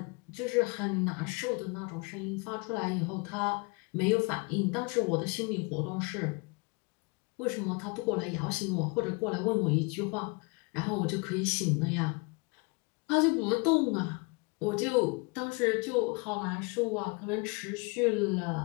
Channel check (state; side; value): quieter; right; 30.0 dB